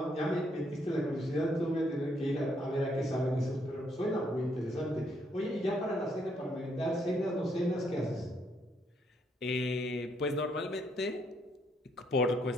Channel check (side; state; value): both; normal; correlation 0.72